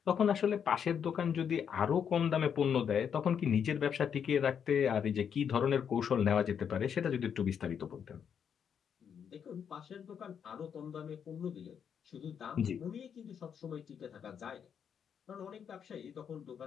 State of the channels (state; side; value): quieter; right; 7.7 dB